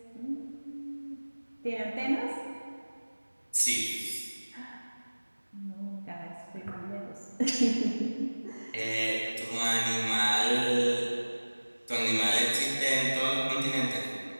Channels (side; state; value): both; inverted; correlation -1.00